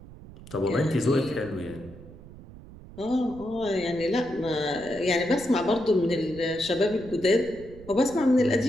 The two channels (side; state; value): right; noise; rumble, 17 dB below the sound